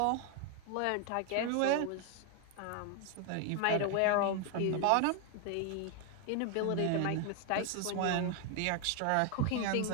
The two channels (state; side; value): different; both; correlation 0.01